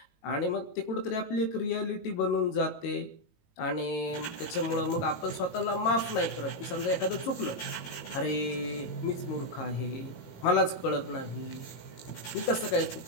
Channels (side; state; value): right; late; 18 ms